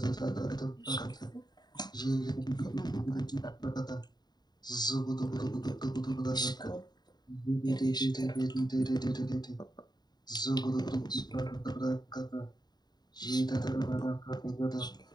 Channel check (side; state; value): right; late; 0.20 ms